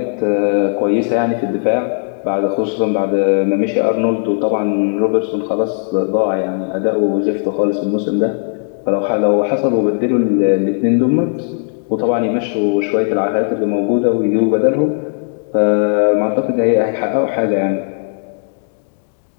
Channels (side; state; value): right; silent; 69 dB below the other